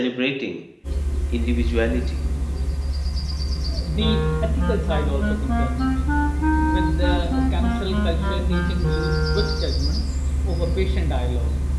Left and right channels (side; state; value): both; identical; correlation 1.00